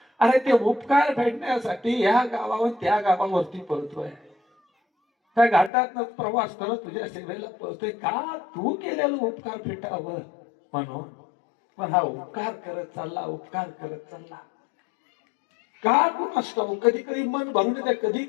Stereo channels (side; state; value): right; drops out; at 5.7 s